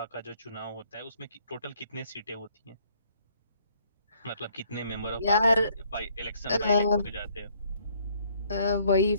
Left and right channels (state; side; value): inverted; both; correlation -0.64